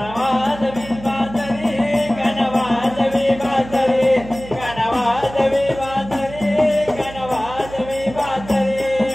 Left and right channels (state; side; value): noise; right; hum, 15 dB below the sound